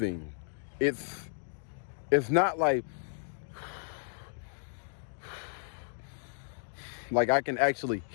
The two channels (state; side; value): silent; right; digital silence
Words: It's not like I can actually